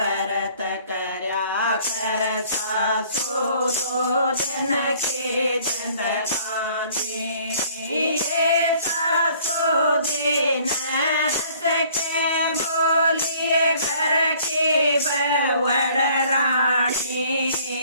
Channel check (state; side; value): inverted; both; correlation -0.56